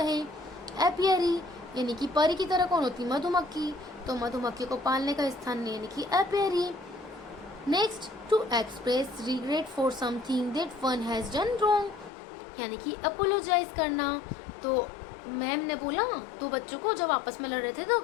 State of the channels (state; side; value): drops out; right; at 12.1 s